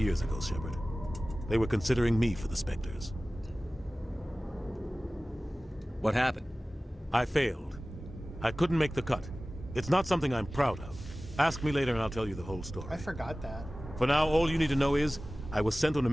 ago, Shepard. They were considering me for the Spectres. What happened? I failed. I couldn't make the cut. It's not something I'm proud of. Ask me later and I'll tell you the whole story. I forgot that. For now, all you need to know is, I was sent on a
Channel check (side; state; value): both; normal; correlation 0.97